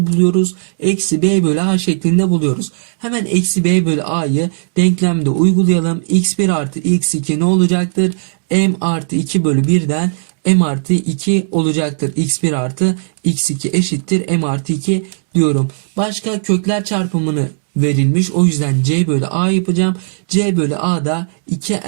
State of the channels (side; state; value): left; silent; 69 dB below the other